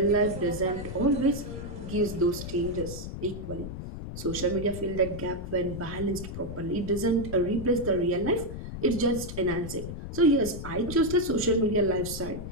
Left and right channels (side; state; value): left; noise; rumble, 8 dB below the sound